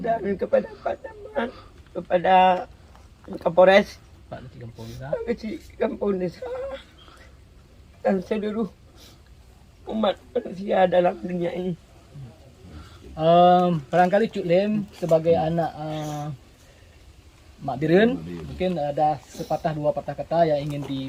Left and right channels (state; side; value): identical; both; correlation 1.00